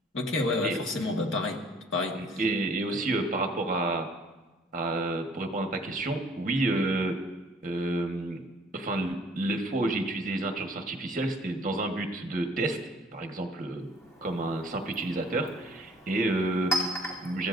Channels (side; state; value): both; normal; correlation 0.56